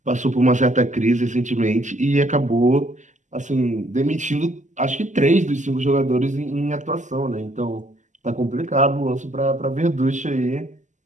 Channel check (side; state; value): left; late; 0.35 ms